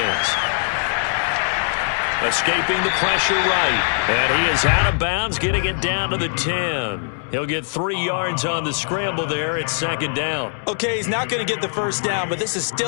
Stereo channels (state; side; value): silent; right; digital silence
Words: Escaping the pressure right. And he is out of bounds, getting it down to the 10. He'll get 3 yards on the scramble there. It's second down. Okay, he's not going to get the first down, but this is